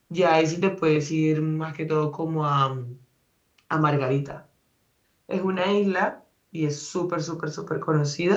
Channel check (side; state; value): both; identical; correlation 1.00